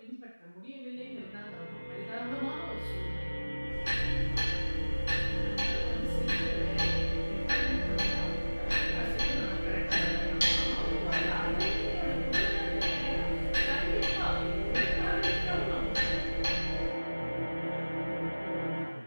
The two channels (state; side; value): inverted; both; correlation -1.00